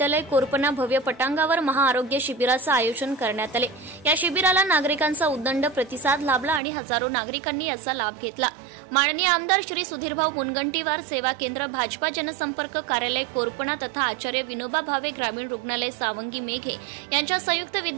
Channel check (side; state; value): left; drops out; at 6.6 s